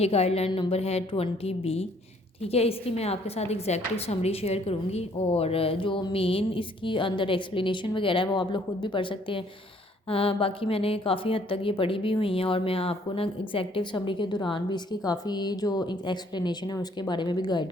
गाइडलाइन नंबर है 20B। ठीक है, इसकी मैं आपके साथ एग्जैक्टिव समरी शेयर करूँगी और जो मेन इसकी अंदर एक्सप्लेनेशन वगैरह है वो आप लोग खुद भी पढ़ सकते हैं। बाकी मैंने काफ़ी हद तक ये पढ़ी भी हुई हैं और मैं आपको ना एग्जैक्टिव समरी के दौरान भी इसकी काफ़ी जो एक्सप्लेनेशन है उसके बारे में भी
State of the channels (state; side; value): normal; both; correlation 0.63